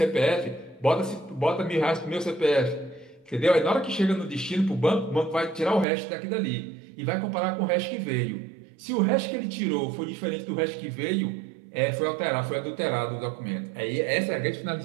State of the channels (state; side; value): drops out; left; at 5.9 s